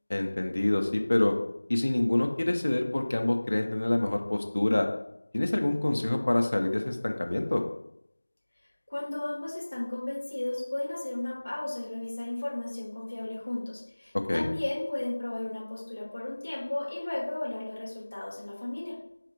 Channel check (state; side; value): inverted; both; correlation -1.00